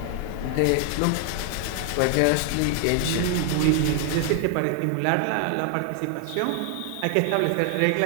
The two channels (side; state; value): both; different; correlation 0.00